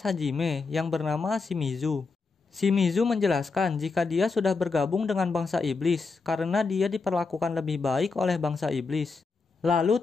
Hajime yang bernama Shimizu. Shimizu menjelaskan jika dia sudah bergabung dengan bangsa iblis karena dia diperlakukan lebih baik oleh bangsa iblis. Lalu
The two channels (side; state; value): right; quieter; 4.3 dB